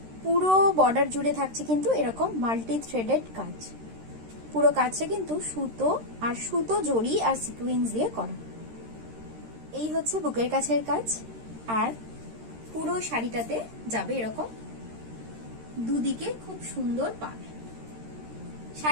পুরো বর্ডার জুড়ে থাকছে কিন্তু এরকম মাল্টি থ্রেডেড কাজ। পুরো কাজটা কিন্তু সুতো জড়ি আর সিকুয়েন্স দিয়ে করা। এই হচ্ছে বুকের কাছের কাজ। আর পুরো শাড়িটাতে যাবে এরকম দুদিকে খুব সুন্দর পাড়।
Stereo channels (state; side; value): late; left; 13 ms